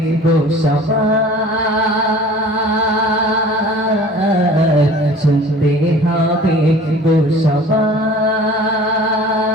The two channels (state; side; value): normal; both; correlation 0.46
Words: গো সবার, শুনতে হবে গো সবার,